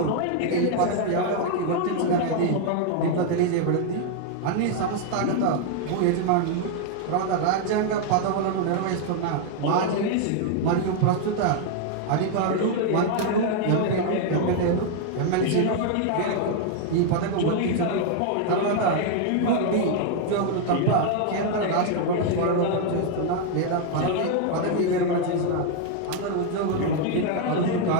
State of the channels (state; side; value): different; both; correlation 0.00